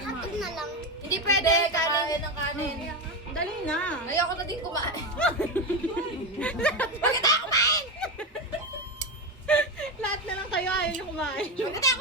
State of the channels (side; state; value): both; normal; correlation 0.15